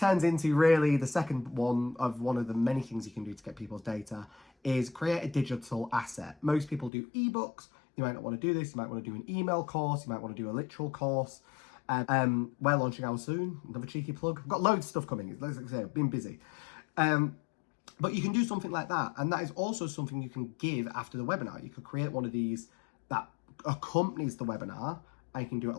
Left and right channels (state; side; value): drops out; right; at 6.9 s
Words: into really the second one of the many things you can do to get people's data, is create a digital asset. Most people do ebooks. You might not want to do this. You might want to do an email course. You might want to do a literal course. We're launching ours soon. Another cheeky plug. I've got loads of stuff coming. Like I say, I've been busy. But you can do something like that. And that is also something you can give after the webinar. You could create one of these that accompanies the webinar, and you can do it